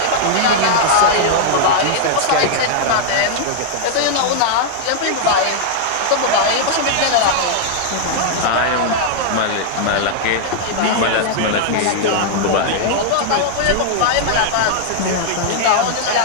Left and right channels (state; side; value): different; both; correlation -0.01